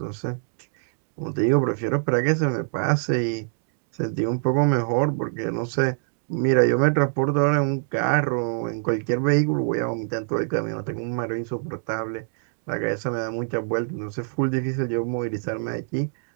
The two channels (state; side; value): silent; left; digital silence